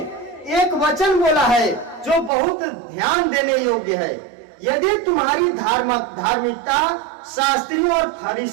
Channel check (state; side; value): drops out; left; at 2.3 s